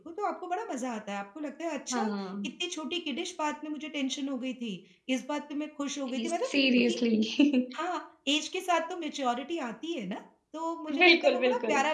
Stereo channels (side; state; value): both; identical; correlation 1.00